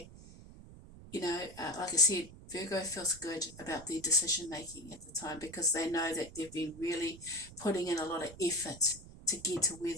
like I said, Virgo feels good about their decision making at the time, because they know that they've been really putting in a lot of effort to get to where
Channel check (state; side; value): noise; right; rumble, 17 dB below the sound